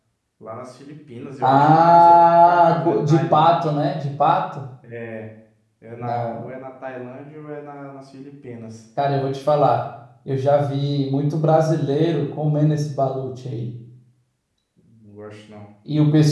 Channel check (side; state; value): both; identical; correlation 1.00